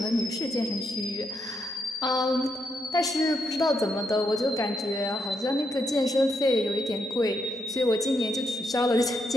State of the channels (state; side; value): normal; both; correlation 0.79